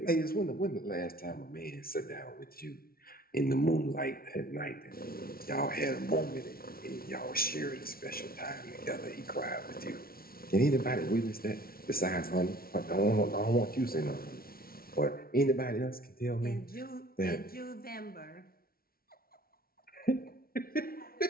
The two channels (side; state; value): right; late; 0.43 ms